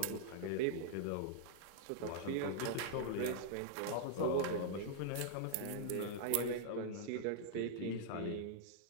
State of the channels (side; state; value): both; different; correlation -0.01